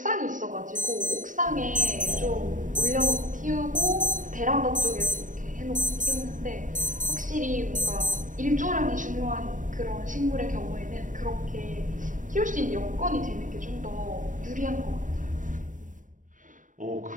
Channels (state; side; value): late; left; 0.38 ms